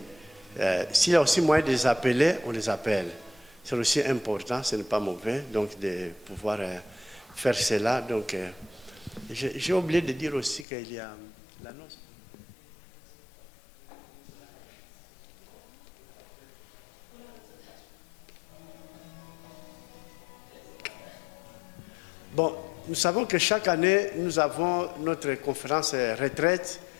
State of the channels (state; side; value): drops out; right; at 10.7 s